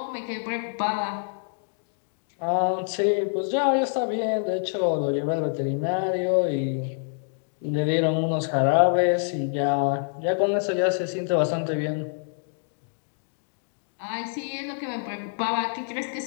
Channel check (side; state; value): right; silent; digital silence